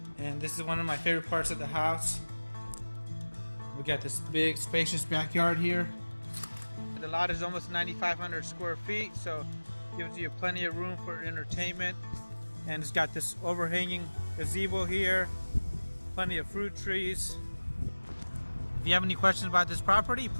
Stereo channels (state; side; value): inverted; both; correlation -1.00